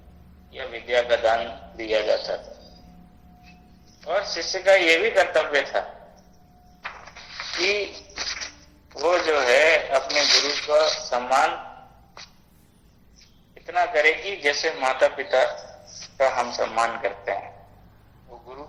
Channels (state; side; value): identical; both; correlation 1.00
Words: या विद्या का दान दिया जाता था। और शिष्य का ये भी कर्तव्य था कि वो जो है अपने गुरु का सम्मान इतना करे कि जैसे माता पिता का हम सम्मान करते हैं, वो गुरु